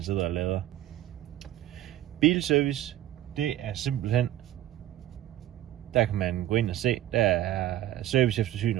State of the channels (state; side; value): quieter; left; 13.4 dB